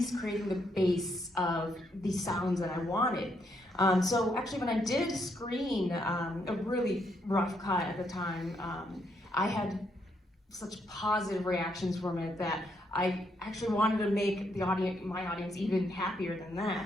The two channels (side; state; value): both; normal; correlation 0.76